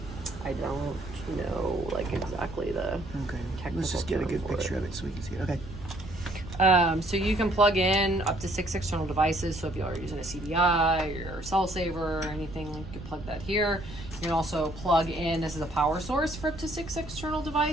I don't know like exactly the technical. Let's just get a good picture of it so we can see it. Okay. So you can plug in up to 6 external devices. So if you are using a CDI or cell saver or anything, you can plug that here. You can also plug in, this is a power source for up to 6 external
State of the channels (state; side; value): noise; right; rumble, 13 dB below the sound